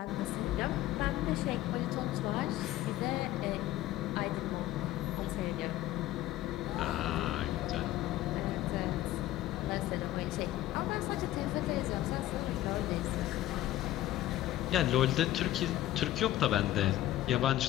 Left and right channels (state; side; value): quieter; right; 14.5 dB